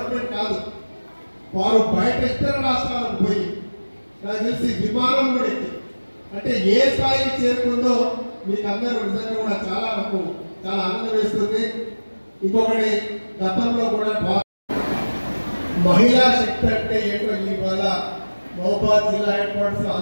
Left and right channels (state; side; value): inverted; both; correlation -1.00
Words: కాదు, వారు బయట ఇతర రాష్ట్రాలకు పోయి నాకు తెలిసి విమానం కూడా ఎక్కి అంటే ఏ స్థాయికి చేరుకుందో మీకు అందరూ నిజంగా కూడా నాకు చాలా ఆనందం వేస్తుంది. ఇంకొకటి, గతంలో కూడా మహిళా శక్తి అంటే ఏంటో ఇవాళ మహబూబాబాద్ జిల్లా హెడ్ క్వార్టర్స్